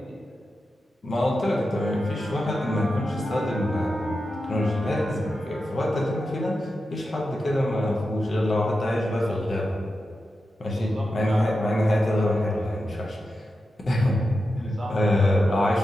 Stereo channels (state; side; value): normal; both; correlation 0.90